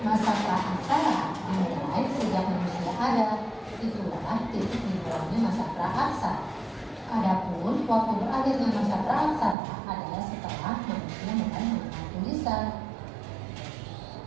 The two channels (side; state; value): left; drops out; at 9.6 s